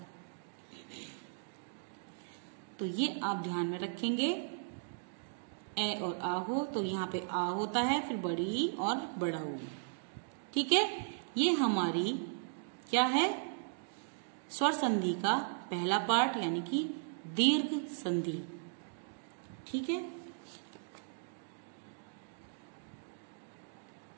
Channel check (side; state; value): left; silent; digital silence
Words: तो ये आप ध्यान में रखेंगे। ए और आ हो तो यहाँ पे आ होता है, फिर बड़ी और बड़ा ऊ। ठीक है। ये हमारी क्या है, स्वर संधि का पहला पार्ट, यानी कि दीर्घ संधि। ठीक है।